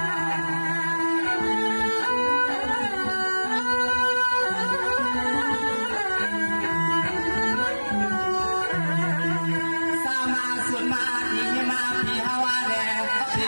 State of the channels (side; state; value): both; inverted; correlation -1.00